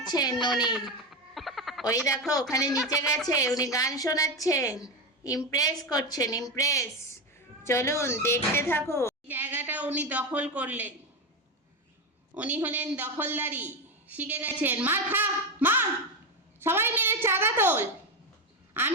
উনি ওই দেখো ওখানে নিচে গেছে, উনি গান শোনাচ্ছেন, ইমপ্রেস করছেন, ইমপ্রেস। চলুন দেখতে থাকো। জায়গাটা উনি দখল করলেন, উনি হলেন দখলদারি, শিখে গেছেন। মার খা, মার, সবাই মিলে চাঁদা তোল,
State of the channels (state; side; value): normal; both; correlation 0.14